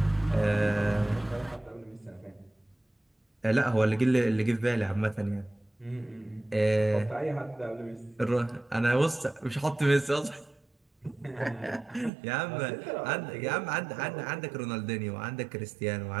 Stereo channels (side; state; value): left; drops out; at 12.1 s